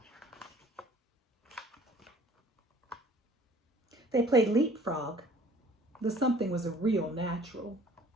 They played leapfrog. The something was a real natural.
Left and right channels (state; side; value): normal; both; correlation 0.53